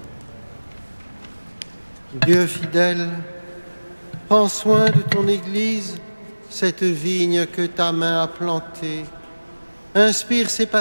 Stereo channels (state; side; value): inverted; both; correlation -1.00